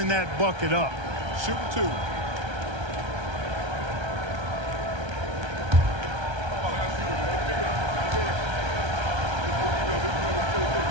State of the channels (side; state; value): left; late; 1.3 ms